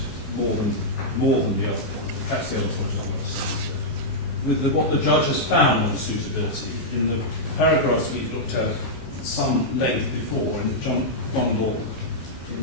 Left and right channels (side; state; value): right; late; 15 ms